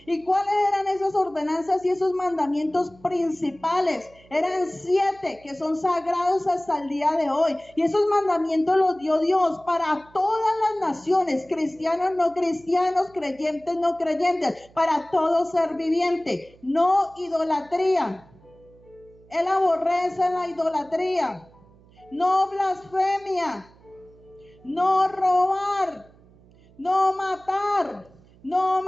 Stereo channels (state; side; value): noise; right; hum, 27 dB below the sound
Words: ¿Y cuáles eran esas ordenanzas y esos mandamientos principales? Eran 7 que son sagrados hasta el día de hoy. Y esos mandamientos los dio Dios para todas las naciones, cristianos, no cristianos, creyentes, no creyentes, para todo ser viviente. No idolatría. Él aborrece la idolatría. No blasfemia. No robar. No matar, no